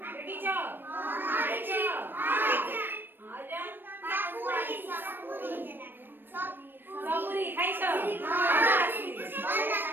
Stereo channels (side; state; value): left; late; 0.095 ms